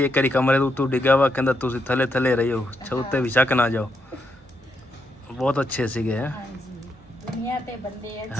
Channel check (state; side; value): normal; both; correlation 0.80